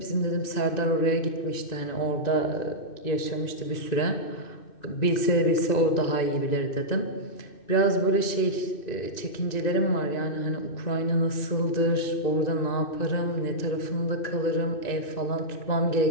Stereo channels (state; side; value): late; right; 2.6 ms